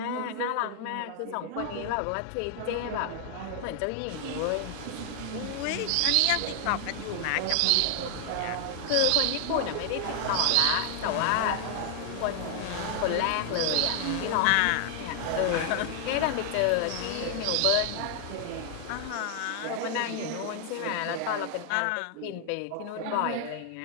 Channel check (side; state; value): both; different; correlation 0.00